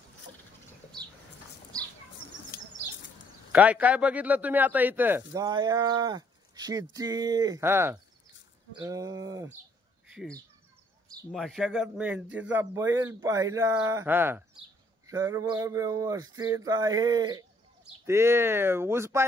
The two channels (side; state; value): both; normal; correlation 0.66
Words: काय काय बघितलं तुम्ही आता इथं? गाया, शेती, मशागत मेहनतीचा बैल पाहिला, सर्व व्यवस्थित आहे। ते ऊस